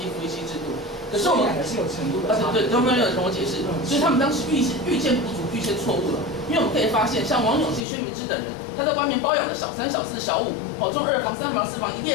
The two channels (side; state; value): right; drops out; at 7.8 s